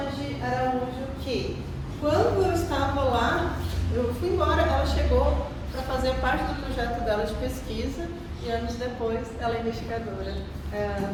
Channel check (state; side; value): identical; both; correlation 1.00